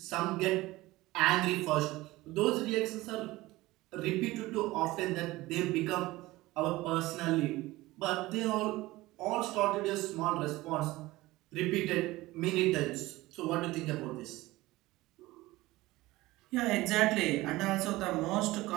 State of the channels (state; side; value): quieter; left; 19.0 dB